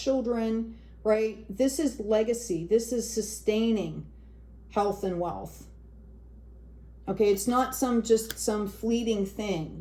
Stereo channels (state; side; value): identical; both; correlation 1.00